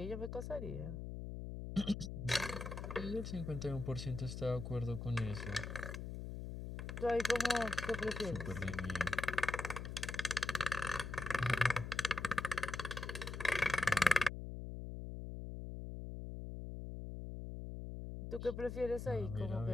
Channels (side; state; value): left; noise; hum, 6 dB below the sound